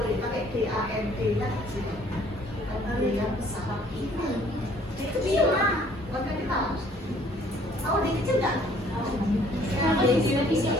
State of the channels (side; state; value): both; normal; correlation 0.59